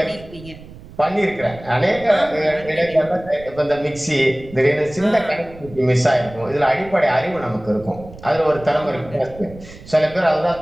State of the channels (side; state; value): right; noise; rumble, 18 dB below the sound